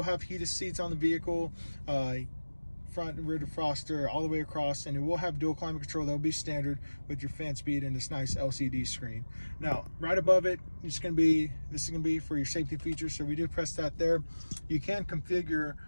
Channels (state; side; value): inverted; both; correlation -1.00